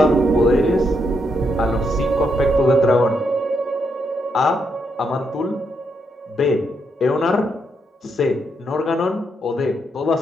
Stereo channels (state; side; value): normal; both; correlation 0.79